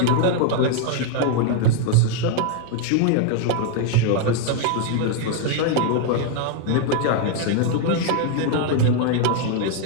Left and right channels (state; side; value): different; both; correlation 0.00